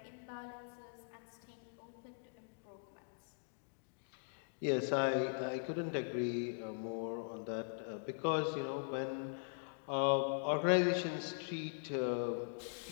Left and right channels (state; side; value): silent; right; digital silence